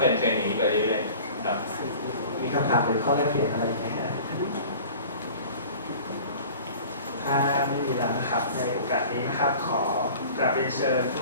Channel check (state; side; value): inverted; both; correlation -0.43